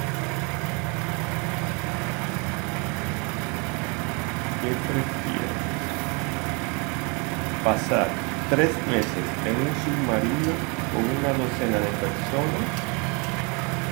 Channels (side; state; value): left; quieter; 32.0 dB